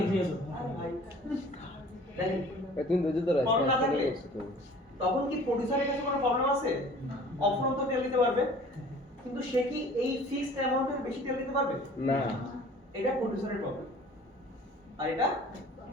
ভাই, দেখেন, তুমি বুঝতে তো প্রবলেম না থাকলে রাখছো। তখন কি প্রোডিউসারের কাছে কোনো প্রবলেম আছে? অফরন্ত তেল দিতে পারবে, কিন্তু সে কি এই ফিক্সড অ্যামাউন্টের বেশি তেল দিতে পারবে না। এটা প্রোডিউসারের প্রবলেম, আর এটা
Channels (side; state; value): both; normal; correlation 0.48